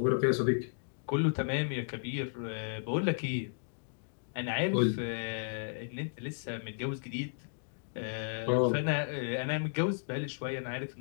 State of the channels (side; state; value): right; silent; digital silence